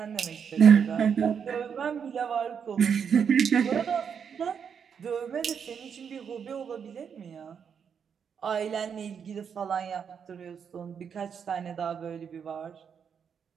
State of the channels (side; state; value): left; quieter; 7.1 dB